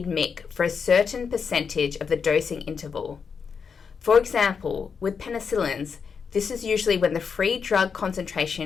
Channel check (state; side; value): quieter; right; 6.0 dB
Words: Mick for a certain percentage of the dosing interval. For example, with penicillins, this is usually when the free drug